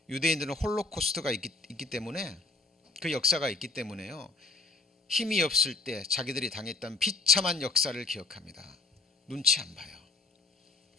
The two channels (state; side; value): quieter; right; 3.4 dB